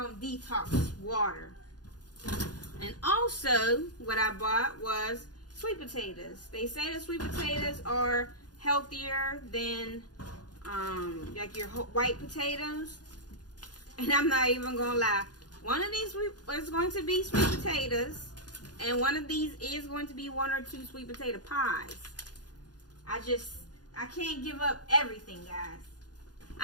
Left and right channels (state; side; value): late; right; 0.69 ms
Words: them, detox water. And also, what I bought was sweet potatoes. They say the sweet potatoes are healthier than like your white potatoes. And I'm not even gonna lie. One of these is going to be sweet potatoes, and one of these is going to be 1 or 2 sweet potato pies. I can't give up everything, guys.